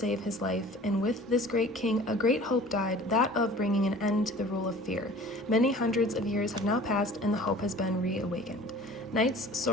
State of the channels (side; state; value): both; normal; correlation 0.46